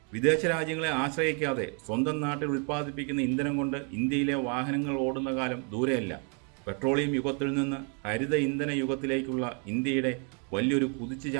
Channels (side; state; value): left; quieter; 38.0 dB